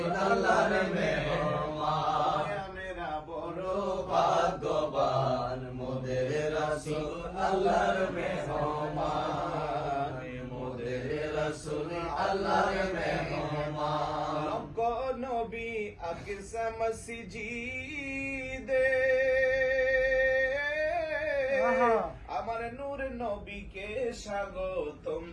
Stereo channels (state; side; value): identical; both; correlation 1.00